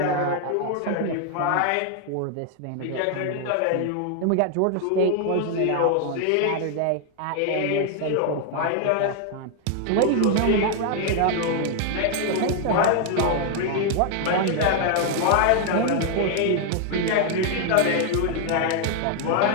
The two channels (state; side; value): different; both; correlation 0.00